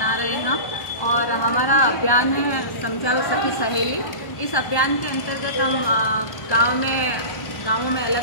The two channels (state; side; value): late; right; 1.1 ms